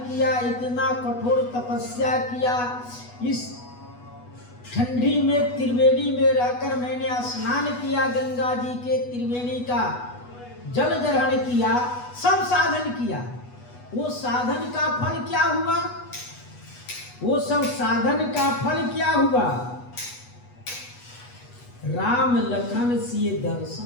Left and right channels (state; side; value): late; right; 8.2 ms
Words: इतना कठोर तपस्या किया, इस ठंडी में त्रिवेणी में रहकर मैंने स्नान किया, गंगा जी के त्रिवेणी का जल ग्रहण किया, सब साधन किया। वो साधन का फल क्या हुआ? वो सब साधन का फल क्या हुआ? राम लखन सिए